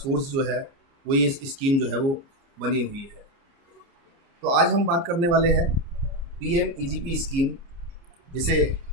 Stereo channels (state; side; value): late; left; 29 ms